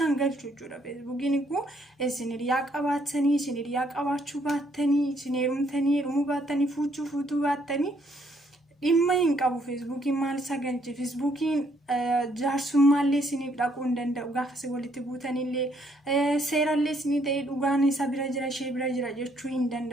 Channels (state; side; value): normal; both; correlation 0.69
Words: galchu jechuudha. Feesbuukiin kun isin hiriyaa qabaatanii isin hiriyaa qabaachuu baattanii isin heerumtanii heerumuu baattanii fuutuu baattanii dhimma hin qabu. Feesbuukiin maal isa galche feesbuukiin jaarsummallee isiniif dhaquu hin danda'u gaafa isin walitti buutanillee seerallee isinii ta'ee dhugaan isa bira jira ishee bira jira jechuu hin